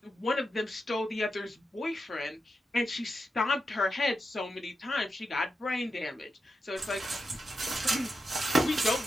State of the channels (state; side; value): normal; both; correlation 0.87